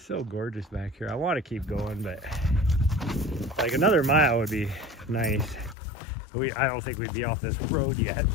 so gorgeous back here. I want to keep going, but like another mile would be nice. I don't think we'd be off this road yet.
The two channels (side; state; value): right; drops out; at 5.8 s